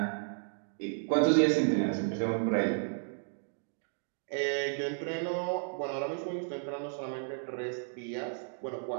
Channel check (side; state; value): left; silent; digital silence